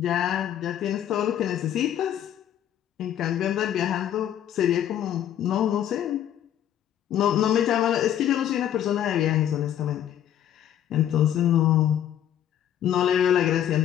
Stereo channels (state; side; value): quieter; right; 10.7 dB